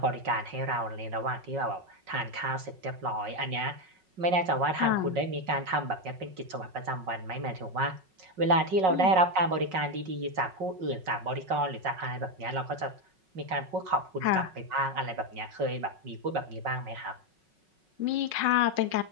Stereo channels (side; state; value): left; late; 5.4 ms